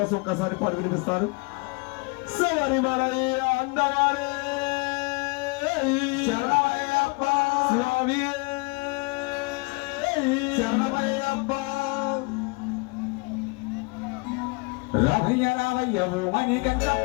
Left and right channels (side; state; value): right; quieter; 28.5 dB